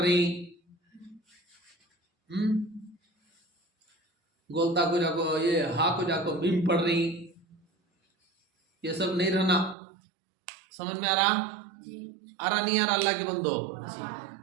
गोलता को जाको ये हा को जाको मीम पढ़ रही, ये सब नहीं रहना। समझ में आ रहा? आ रहा नहीं आ रहा अल्लाह के बंदो?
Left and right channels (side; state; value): left; drops out; at 9.8 s